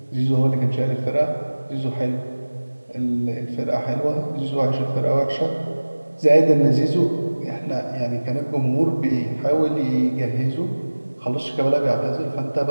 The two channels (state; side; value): inverted; both; correlation -1.00